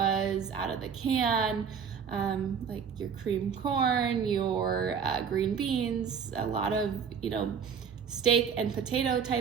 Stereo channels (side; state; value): left; quieter; 6.9 dB